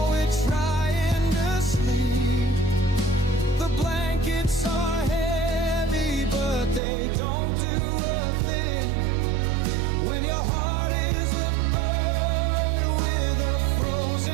we're trying to sleep. The blankets are heavy, but they don't do a thing when your heart is a bird with a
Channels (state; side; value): drops out; left; at 6.8 s